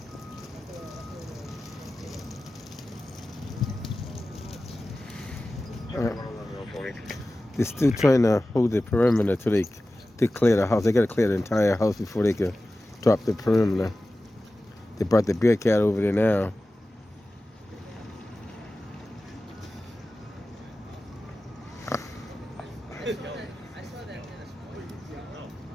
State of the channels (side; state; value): both; normal; correlation 0.95